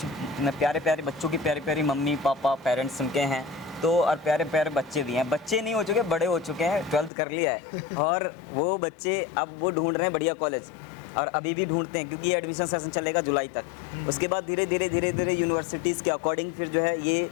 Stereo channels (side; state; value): right; drops out; at 7.1 s